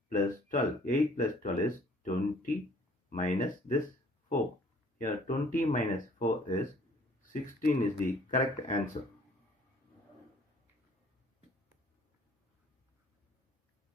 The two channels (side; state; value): both; normal; correlation 0.57